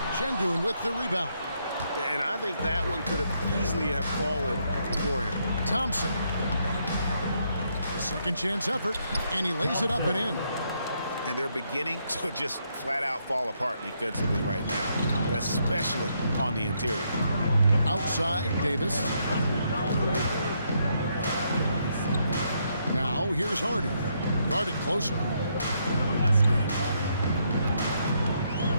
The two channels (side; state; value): both; inverted; correlation -0.75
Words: Sengun with the rebound. And I think that one could have easily have fallen for him. Thompson. The second chance effort, and he lays it up and in. And they're beginning to just flat out fall apart defensively right now, especially on the interior. Outside, Davis. Now, here's Hardy. Guarded closer.